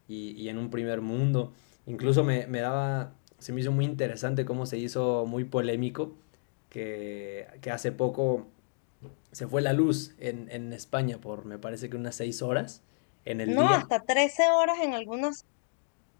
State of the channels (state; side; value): silent; right; digital silence